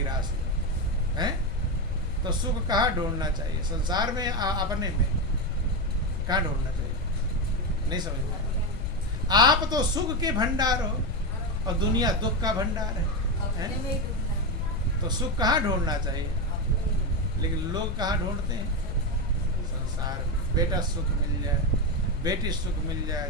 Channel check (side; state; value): left; noise; rumble, 2 dB below the sound